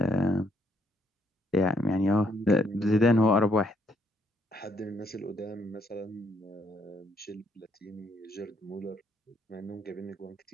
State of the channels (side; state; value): both; normal; correlation 0.71